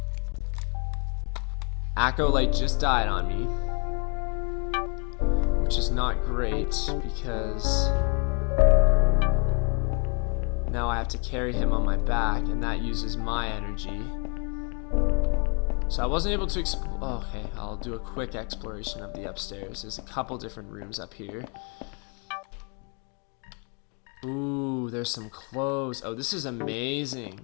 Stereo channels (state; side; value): quieter; right; 35.5 dB